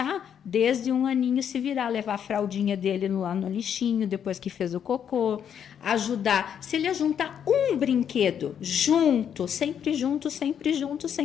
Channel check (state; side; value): quieter; right; 8.5 dB